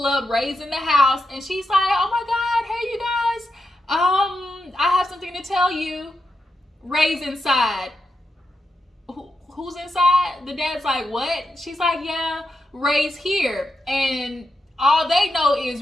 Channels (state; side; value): normal; both; correlation 0.86